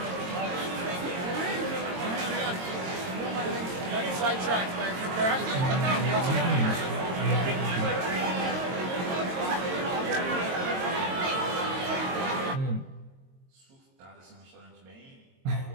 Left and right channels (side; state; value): left; late; 22 ms